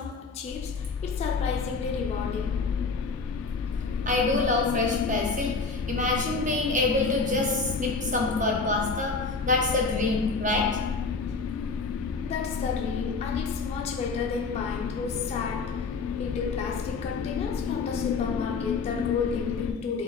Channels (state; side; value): quieter; right; 4.3 dB